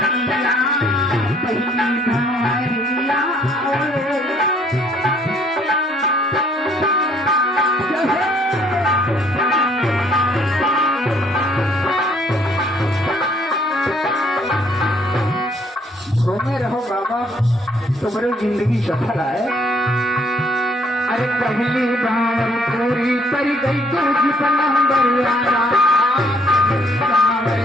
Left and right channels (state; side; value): normal; both; correlation 0.64